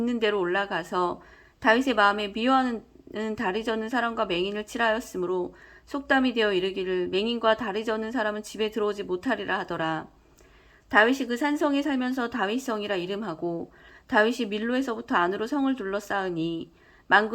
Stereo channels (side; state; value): both; identical; correlation 1.00